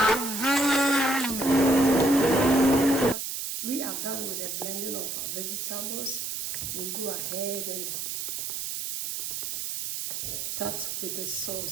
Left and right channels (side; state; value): right; noise; hiss, 4 dB below the sound